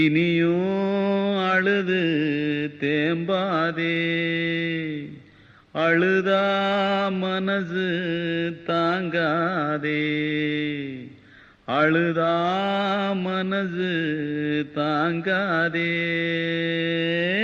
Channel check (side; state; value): both; identical; correlation 1.00